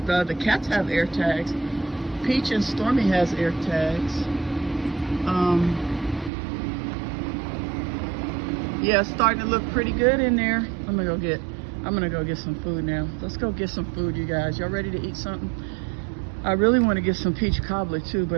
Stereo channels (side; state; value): left; drops out; at 6.3 s